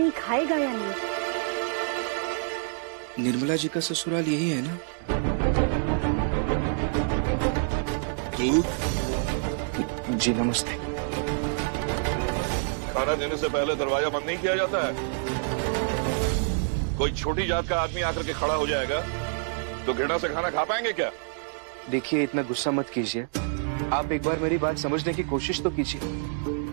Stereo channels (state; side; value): silent; left; digital silence